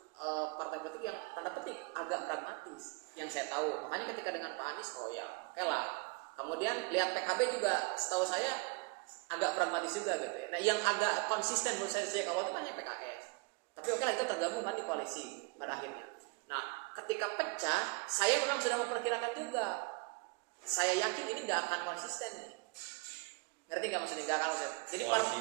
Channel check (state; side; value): quieter; left; 29.2 dB